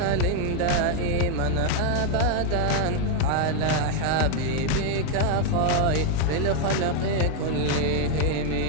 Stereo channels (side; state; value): both; different; correlation 0.00